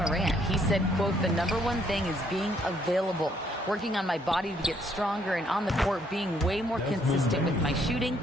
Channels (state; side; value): normal; both; correlation 0.68